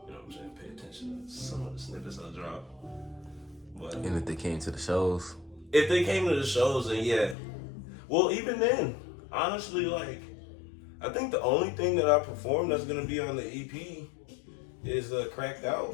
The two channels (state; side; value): drops out; right; at 7.4 s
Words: know what I'm saying, pay attention to some of the snippets I drop. But And if they came to the shows? If they came to the shows, then yeah. Well, even then, honestly, like, I think the only thing that I perform that's gonna be on the EP is Cracked